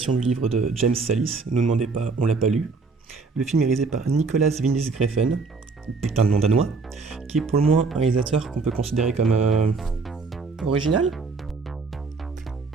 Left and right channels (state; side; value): quieter; left; 4.3 dB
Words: du livre de James Sallis. Ne nous demandez pas, on l'a pas lu. Le film est réalisé par Nicolas Winding Refn, putain de nom danois, qui est pour le moins un réalisateur qu'on peut considérer comme original.